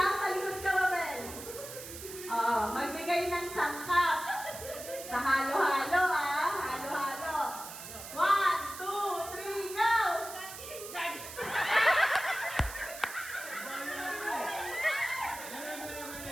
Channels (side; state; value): right; noise; hiss, 11 dB below the sound